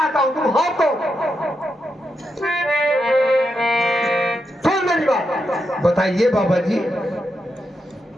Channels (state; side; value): normal; both; correlation 0.84